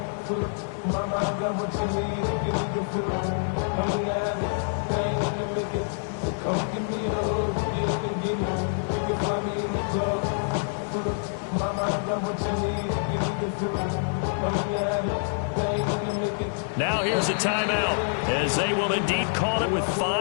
Now here's a timeout, as they will indeed call it with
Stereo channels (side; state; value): right; silent; digital silence